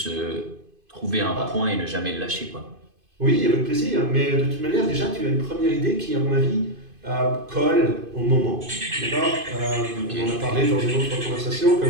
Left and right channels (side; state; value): left; late; 2.5 ms